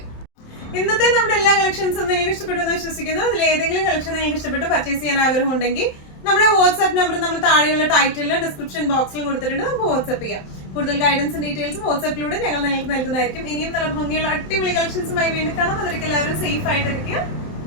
ഇന്നത്തെ നമ്മുടെ എല്ലാ കളക്ഷൻസും നിങ്ങൾക്ക് ഇഷ്ടപ്പെട്ടു എന്ന് വിശ്വസിക്കുന്നു. അതിൽ ഏതെങ്കിലും കളക്ഷൻ നിങ്ങൾക്ക് ഇഷ്ടപ്പെട്ട് പർച്ചേസ് ചെയ്യാൻ ആഗ്രഹം ഉണ്ടെങ്കിൽ നമ്മുടെ വാട്സ്ആപ്പ് നമ്പർ നമ്മൾ താഴെയുള്ള ടൈറ്റിലും ഡിസ്ക്രിപ്ഷൻ ബോക്സിലും കൊടുത്തിട്ടുണ്ട്, നമുക്ക് വാട്സ്ആപ്പ് ചെയ്യാം. കൂടുതൽ ഗൈഡൻസും ഡീറ്റെയിൽസും വാട്സ്ആപ്പിലൂടെ ഞങ്ങൾ നിങ്ങൾക്ക് നൽകുന്നതായിരിക്കും. ഇനിയും നല്ല ഭംഗിയുള്ള അടിപൊളി കളക്ഷൻസുമായി വീണ്ടും കാണാം. അതിലേക്ക് എല്ലാവരും സേഫ് ആയിട്ടിരിക്കുക.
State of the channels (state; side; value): late; right; 27 ms